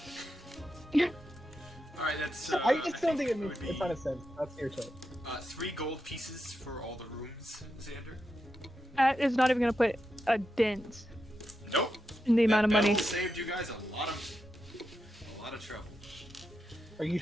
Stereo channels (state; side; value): normal; both; correlation 0.87